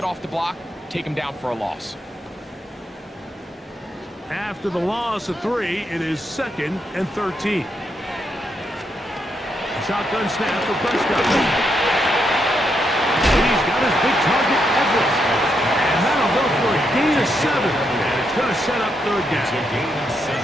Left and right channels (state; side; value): normal; both; correlation 0.80